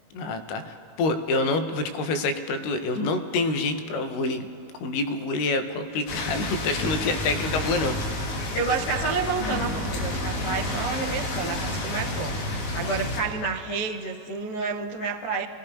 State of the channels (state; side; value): late; right; 19 ms